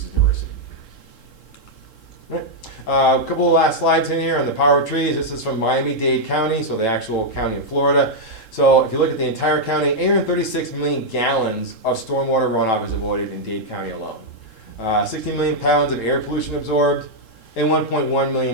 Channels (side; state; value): right; late; 3.7 ms